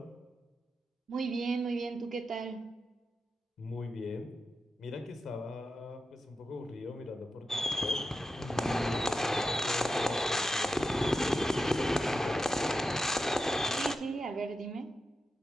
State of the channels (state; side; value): normal; both; correlation 0.89